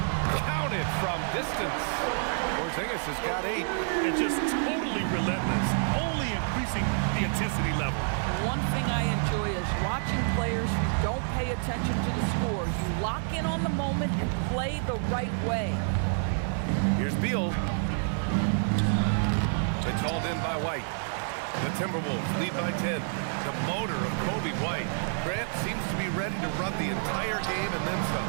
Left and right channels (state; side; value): silent; left; 55 dB below the other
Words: Counted from distance. Porzingis has got 8. And just totally relentless, only increasing the intensity level. One thing I enjoy is watching players who don't pay attention to the score. You lock in on the moment and play the right way. Here's Beal. It's hauled in by White. The Timberwolves lead by 10. The motor of Kobe White. Grant seems to be ready to run the entire game and then some.